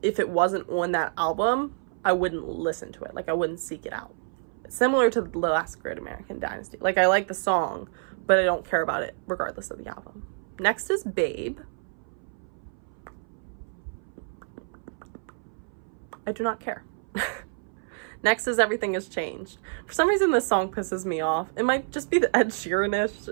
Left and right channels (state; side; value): silent; left; 59 dB below the other